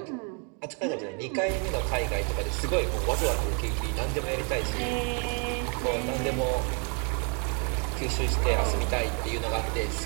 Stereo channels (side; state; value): left; quieter; 38.2 dB